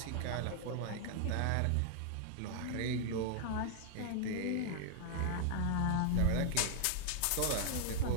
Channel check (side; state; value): both; different; correlation 0.00